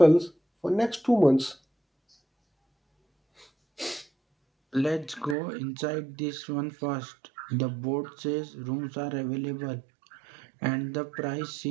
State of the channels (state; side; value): drops out; left; at 5.4 s